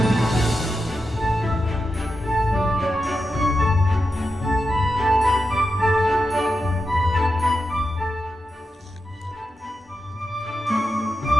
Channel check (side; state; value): both; normal; correlation 0.89